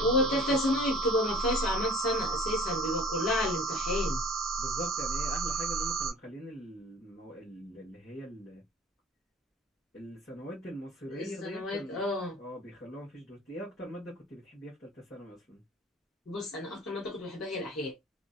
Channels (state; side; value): normal; both; correlation 0.45